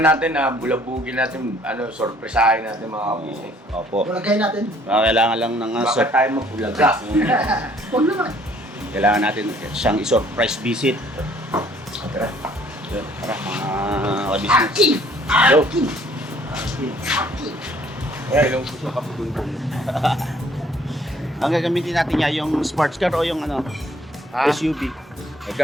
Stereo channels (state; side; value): normal; both; correlation 0.60